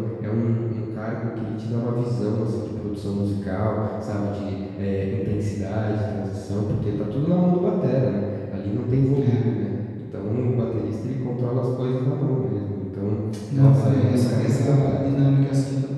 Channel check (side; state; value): both; identical; correlation 1.00